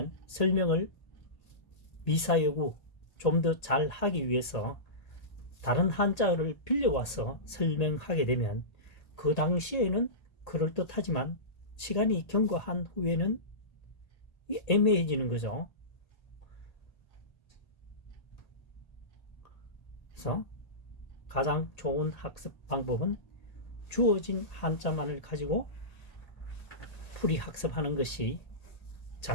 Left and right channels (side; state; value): right; late; 1.8 ms